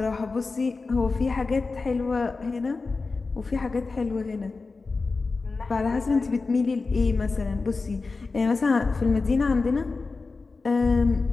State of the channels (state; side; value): quieter; right; 4.0 dB